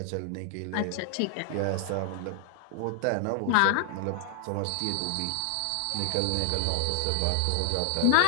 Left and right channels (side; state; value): both; different; correlation 0.00